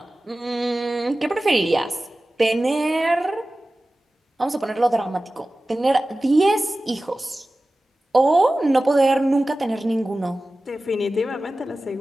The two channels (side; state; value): both; normal; correlation 0.96